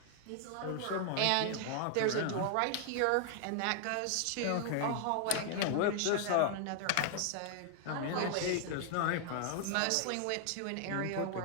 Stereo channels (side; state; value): both; different; correlation 0.00